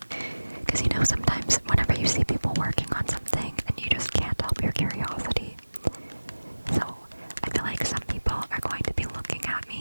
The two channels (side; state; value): both; inverted; correlation -1.00